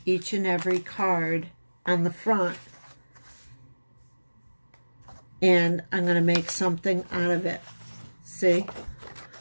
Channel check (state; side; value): inverted; both; correlation -1.00